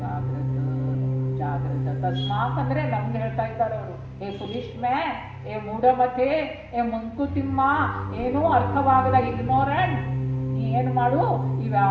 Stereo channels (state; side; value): identical; both; correlation 1.00